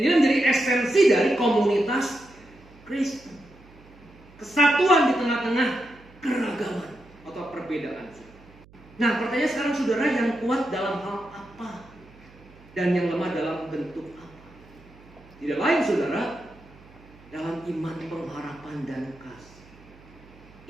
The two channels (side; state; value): right; noise; hum, 24 dB below the sound